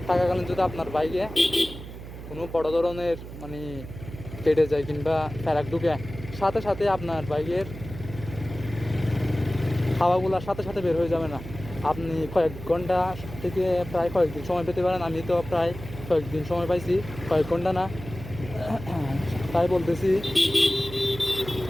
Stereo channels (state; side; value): noise; right; hum, 12 dB below the sound